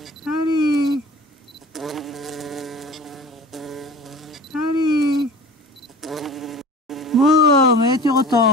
Allez. Allez. Bon, mais tu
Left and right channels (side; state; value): both; normal; correlation 0.40